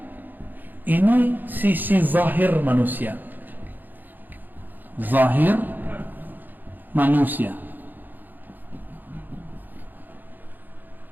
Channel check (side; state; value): left; late; 0.088 ms